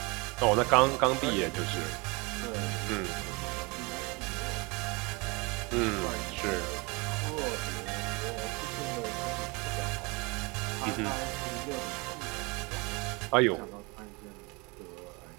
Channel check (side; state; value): left; quieter; 27.5 dB